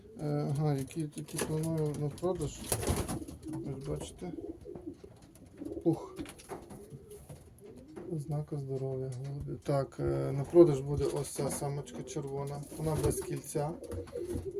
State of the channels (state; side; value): identical; both; correlation 1.00